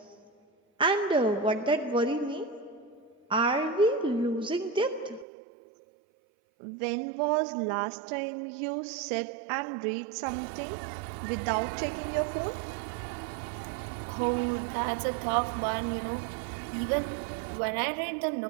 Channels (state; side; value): drops out; left; at 5.2 s